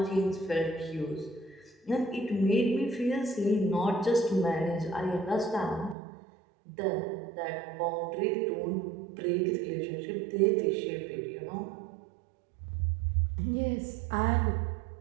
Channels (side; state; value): left; drops out; at 6.0 s